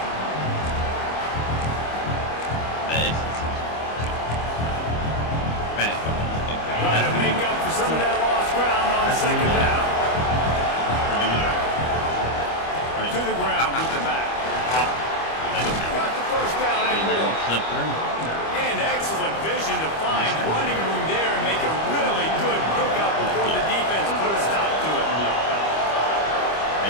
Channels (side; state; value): right; late; 25 ms